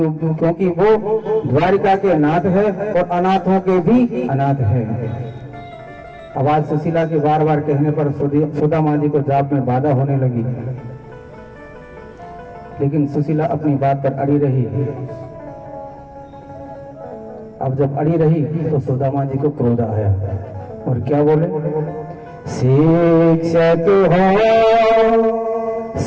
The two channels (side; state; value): both; identical; correlation 1.00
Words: वो द्वारिका के नाथ है और अनाथों के भी अनाथ है। आवाज सुशीला के बार बार कहने पर सुदामा जी को जाप में बाधा होने लगी, लेकिन सुशीला अपनी बात पर अड़ी रही। अब जब अड़ी रही तो सुदामा जी को क्रोध आया और क्या बोले? शिक्षक हो